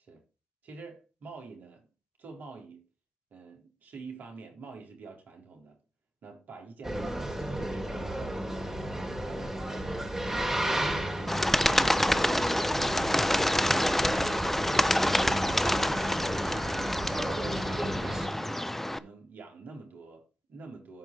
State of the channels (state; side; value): normal; both; correlation 0.95